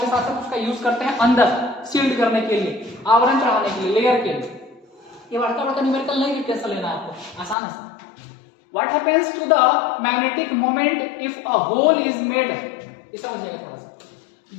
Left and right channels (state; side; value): drops out; right; at 7.6 s